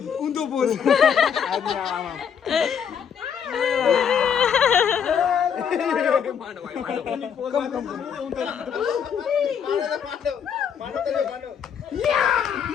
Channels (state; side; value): quieter; right; 7.6 dB